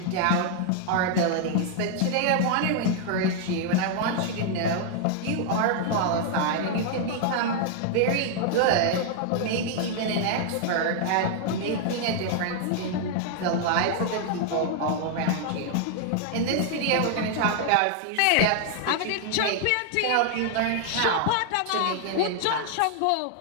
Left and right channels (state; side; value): different; both; correlation 0.00